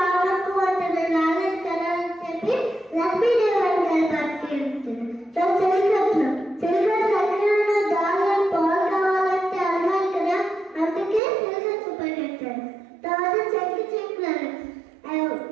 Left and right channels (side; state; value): left; drops out; at 11.2 s